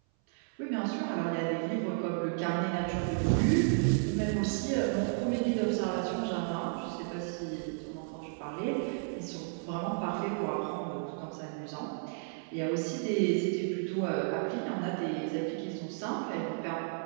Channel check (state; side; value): silent; left; 56 dB below the other